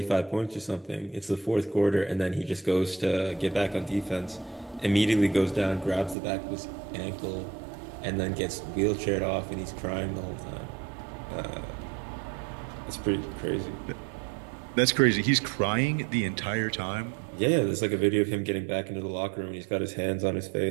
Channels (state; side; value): drops out; left; at 6.2 s